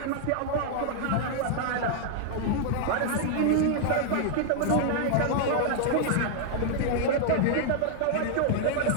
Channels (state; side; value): different; both; correlation -0.01